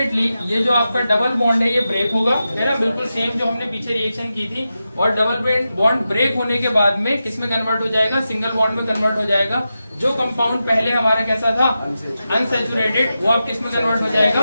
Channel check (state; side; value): inverted; both; correlation -0.91